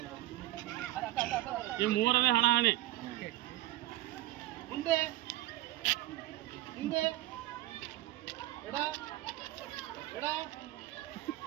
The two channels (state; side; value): quieter; left; 16.7 dB